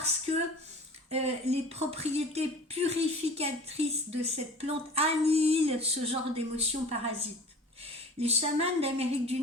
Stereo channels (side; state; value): both; normal; correlation 0.42